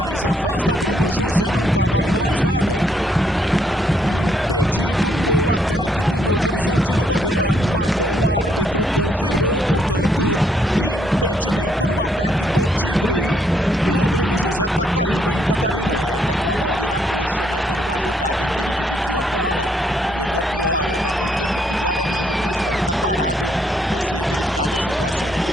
afasta Bruno José. Não tá valendo mais nada. Impedido no ataque do Novo Horizontino. Bandeira marcou, o árbitro confirmou, portanto, impedimento no ataque do Tigre. E o Bruno José tá caído, hein, Catarino? Tá com a mão ali na coxa, né? Foi numa jogada em que ele dividiu a bola e levou a pior o atacante da equipe do Guarani. O jogo nesse momento tá parado para ser verificada a situação. Ele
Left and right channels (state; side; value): normal; both; correlation 0.72